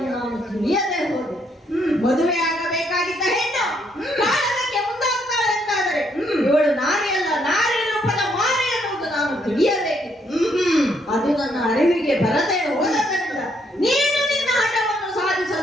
ನಾನು ತಿಳಿಯದೆ ಹೋದೆ. ಮದುವೆ ಆಗಬೇಕಾಗಿದ್ದ ಹೆಣ್ಣು ಕಾಲಕ್ಕೆ ಮುಂದಾಗ್ತಾಳೆ ಅಂತ ಅದು ನನ್ನ ಅರಿವಿಗೆ ಬರದೆ ಹೋದದರಿಂದ ನೀನು ನಿನ್ನ ಹಠವನ್ನು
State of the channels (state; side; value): normal; both; correlation 0.72